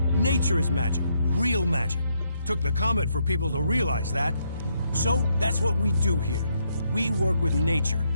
Nature is magic. Real magic. Took the comet for people to realize that. So, that's what we do here. We work with nature.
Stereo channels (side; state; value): both; inverted; correlation -0.76